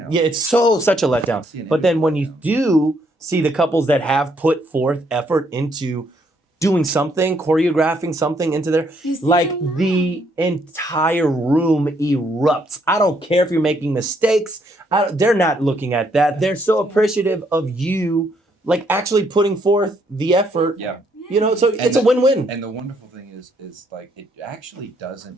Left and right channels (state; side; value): normal; both; correlation 0.71